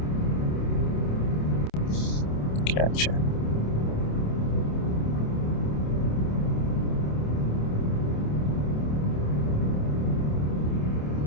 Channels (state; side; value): late; right; 27 ms